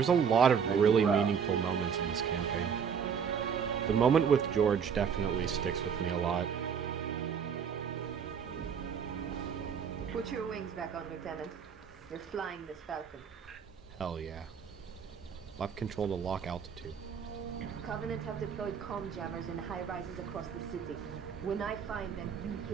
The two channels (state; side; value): quieter; left; 7.1 dB